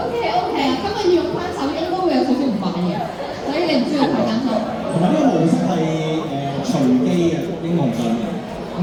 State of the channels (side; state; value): both; identical; correlation 1.00